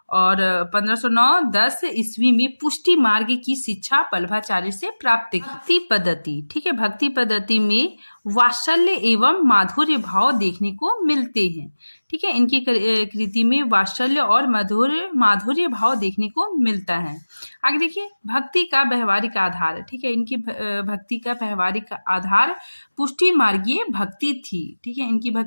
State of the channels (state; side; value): inverted; both; correlation -1.00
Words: और 1509-10 ईस्वी में पुष्टि मार्ग की शिक्षा बल्भाचार्य से प्राप्त की। भक्ति पद्धति, ठीक है, भक्ति पद्धति में वात्सल्य एवं माधुर्य भाव देखने को मिलते हैं। ठीक है, इनकी कृति में वात्सल्य और माधुर्य भाव देखने को मिलता है। आगे देखिए, भक्ति का व्यवहारिक आधार। ठीक है, इनकी भक्ति का व्यवहारिक आधार पुष्टि मार्गीय भक्ति थी। ठीक है, इनकी